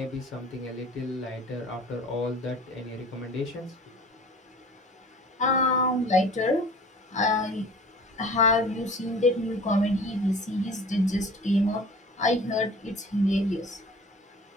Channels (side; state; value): both; normal; correlation 0.44